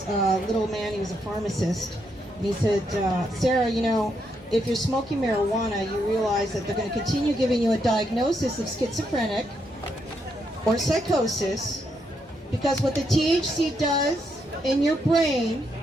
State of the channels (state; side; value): normal; both; correlation 0.79